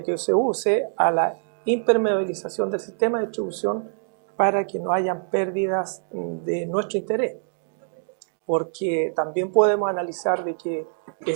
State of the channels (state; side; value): silent; left; digital silence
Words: que se use, a la impermeabilización del sistema de distribución para que no hayan pérdidas de nuestro interés. Porque también podemos analizar de que